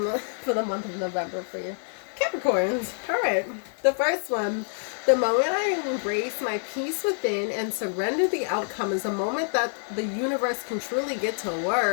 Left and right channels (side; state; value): right; silent; digital silence